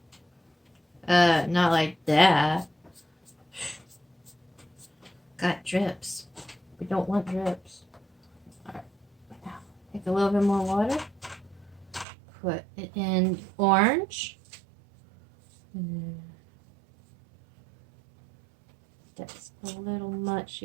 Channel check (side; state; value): left; drops out; at 12.1 s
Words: Not like that. Got drips. We don't want drips. Alright. Now, take a little bit more water. Put it in orange. That's a little much